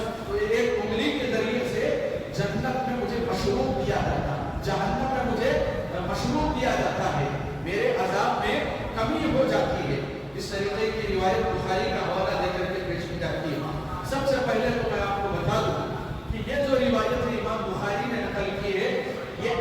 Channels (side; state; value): both; identical; correlation 1.00